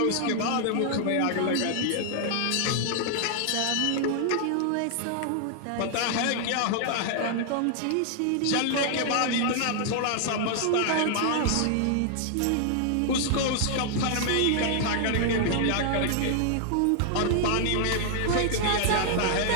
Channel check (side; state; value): both; different; correlation 0.00